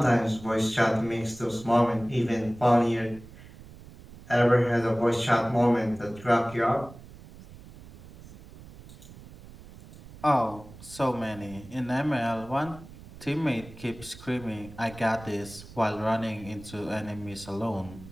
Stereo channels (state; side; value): noise; right; rumble, 18 dB below the sound